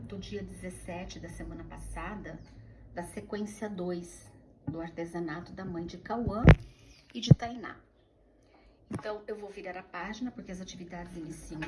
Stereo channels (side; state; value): both; identical; correlation 1.00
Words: do dia 17 da semana passada, da sequência 2 do artesanato da mãe de Cauã e de Tainá. Então, eu vou virar a página, porque as atividades iniciam